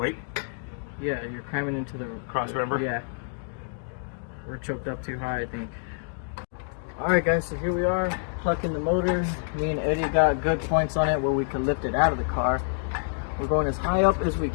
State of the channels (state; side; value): silent; right; digital silence